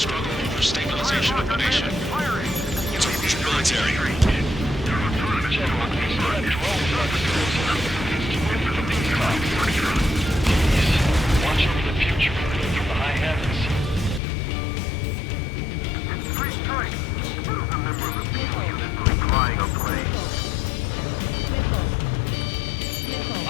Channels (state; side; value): drops out; right; at 14.2 s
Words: over stabilization of the nation. It's Erusian military. Watch over the future from the high heavens.